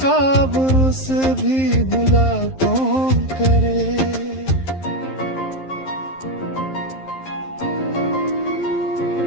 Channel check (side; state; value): right; late; 11 ms